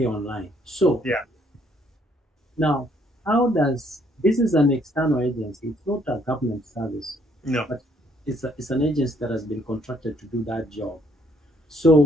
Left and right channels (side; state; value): both; normal; correlation 0.67